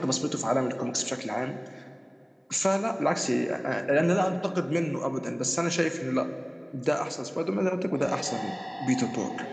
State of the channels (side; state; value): both; identical; correlation 1.00